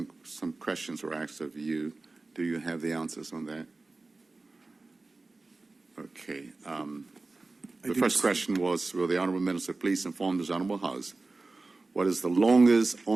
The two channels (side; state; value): left; quieter; 3.5 dB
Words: questions were asked of you. Do you have the answers on that? Okay. The first question was, will the Honourable Minister please inform this Honourable House what is the longest